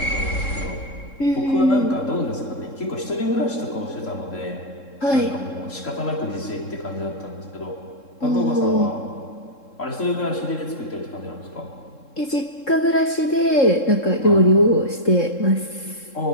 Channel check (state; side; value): late; right; 3.7 ms